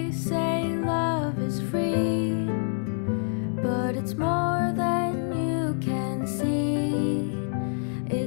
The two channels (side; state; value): right; silent; digital silence